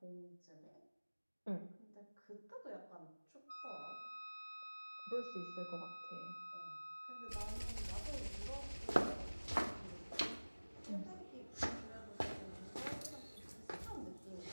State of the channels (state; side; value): inverted; both; correlation -1.00